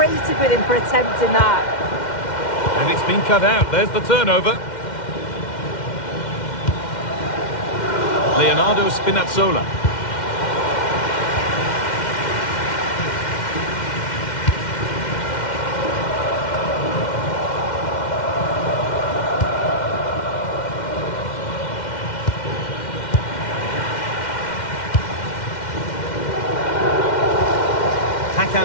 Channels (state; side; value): late; right; 2.1 ms